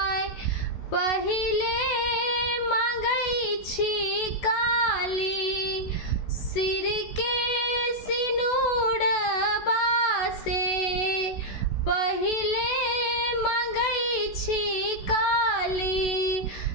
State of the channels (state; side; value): late; right; 16 ms